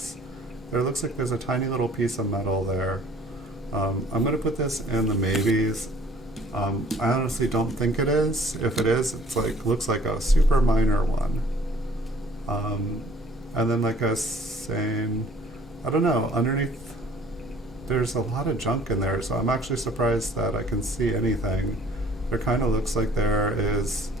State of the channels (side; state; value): both; normal; correlation 0.55